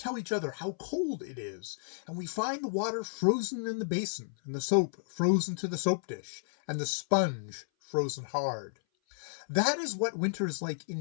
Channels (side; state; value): right; silent; 56 dB below the other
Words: each other how cold it is, and we find the water frozen in the basin, and the soap frozen to the soap dish, and the sponge frozen hard. That is what winter is like